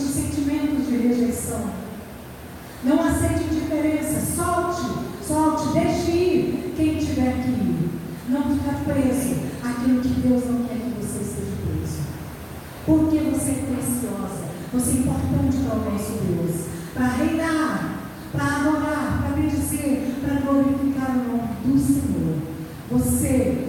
de rejeição. Não aceite indiferença. Solte, deixe ir quem tiver que ir. Não ficar preso àquilo que Deus não quer que você esteja preso. Porque você é preciosa. Você é importante para o nosso Deus. Para reinar, para adorar, para bendizer, para glorificar o nome do Senhor. Você,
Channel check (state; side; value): identical; both; correlation 1.00